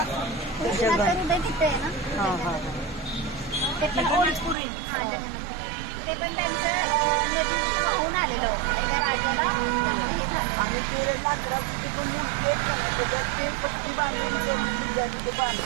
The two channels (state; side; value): drops out; left; at 4.5 s